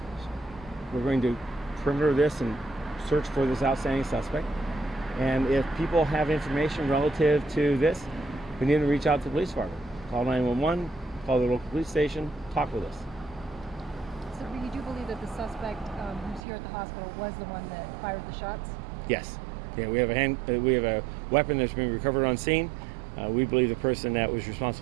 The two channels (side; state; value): left; drops out; at 16.4 s